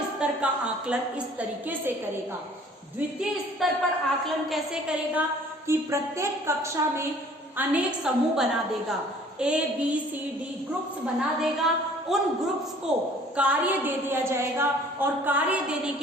स्तर का आकलन इस तरीके से करेगा। द्वितीय स्तर पर आकलन कैसे करेगा कि प्रत्येक कक्षा में अनेक समूह बना देगा, A, B, C, D groups बना देगा उन ग्रुप्स को कार्य दे दिया जाएगा और कार्य देने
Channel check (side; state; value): both; normal; correlation 0.53